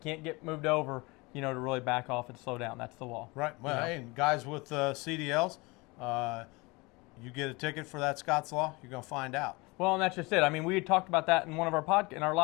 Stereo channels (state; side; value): quieter; right; 25.2 dB